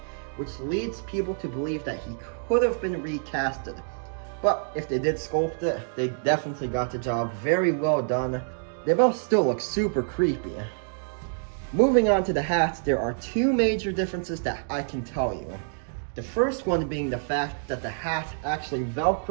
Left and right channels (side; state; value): left; silent; digital silence